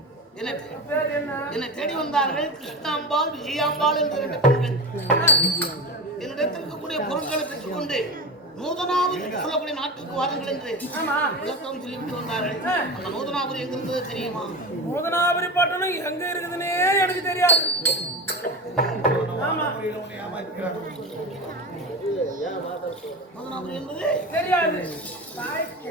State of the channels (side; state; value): both; normal; correlation 0.25